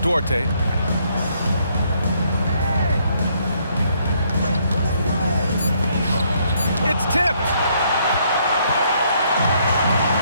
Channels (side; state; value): both; inverted; correlation -0.69